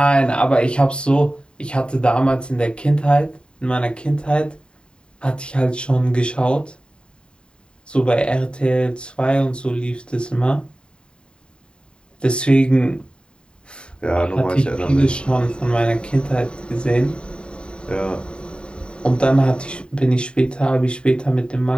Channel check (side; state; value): right; late; 0.051 ms